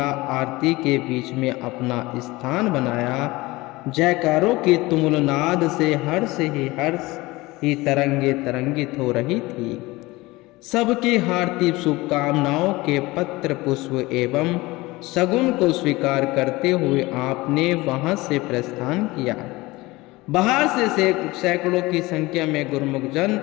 आरती के बीच में अपना स्थान बनाया। जयकारों की तुमुल नाद से हर्ष ही तरंगित हो रही थी। सबकी हार्दिक शुभकामनाओं के पत्र, पुष्प एवं शगुन को स्वीकार करते हुए आपने वहां से प्रस्थान किया। बाहर से सैकड़ों की संख्या में गुरुमुख जन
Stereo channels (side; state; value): right; quieter; 20.9 dB